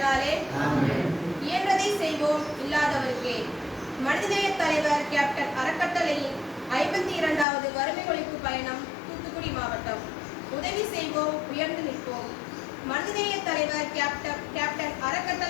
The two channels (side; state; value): right; drops out; at 7.5 s